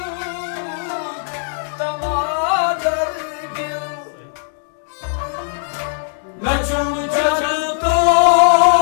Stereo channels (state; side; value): silent; right; digital silence